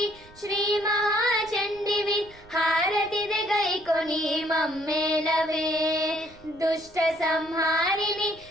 శ్రీ మహాచండివి హారతిదే గైకొని మమ్మేలవే. దుష్ట సంహారిణి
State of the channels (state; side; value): noise; right; rumble, 24 dB below the sound